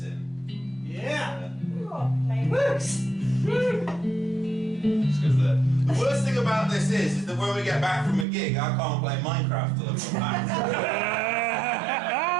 in. Yeah! Just because the worst thing about this is that when we get back from a gig, I can't play Minecraft till I've come back.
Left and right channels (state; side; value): drops out; left; at 8.2 s